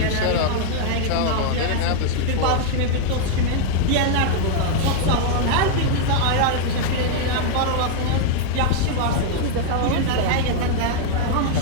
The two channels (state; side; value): different; both; correlation 0.00